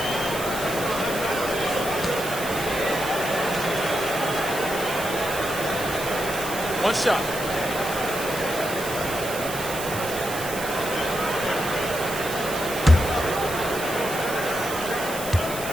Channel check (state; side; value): noise; right; hiss, 8 dB below the sound